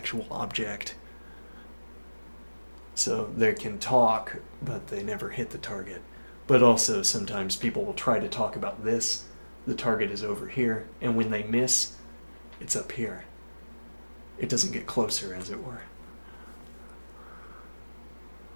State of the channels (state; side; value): inverted; both; correlation -1.00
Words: object. So they can talk, but they never hit the target. But also sometimes people will try to talk about this. The target is over here, and when they miss, it's up here. It doesn't get closer, as it were.